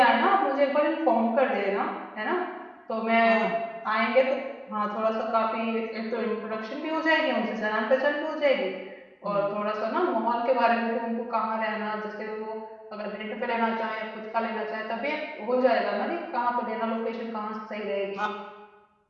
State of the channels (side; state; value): both; identical; correlation 1.00